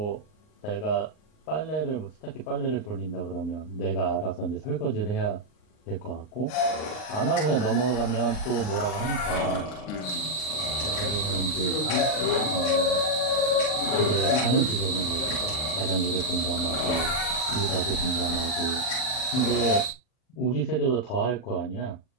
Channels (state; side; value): late; right; 39 ms